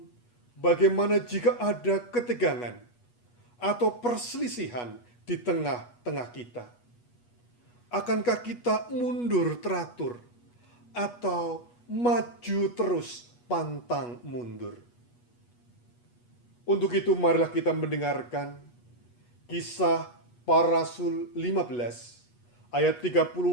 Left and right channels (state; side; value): late; right; 8.3 ms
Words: bagaimana jika ada ketegangan atau perselisihan di tengah-tengah kita? Akankah kita mundur teratur atau maju terus pantang mundur? Untuk itu marilah kita mendengarkan Kisah Para Rasul 15 ayat 36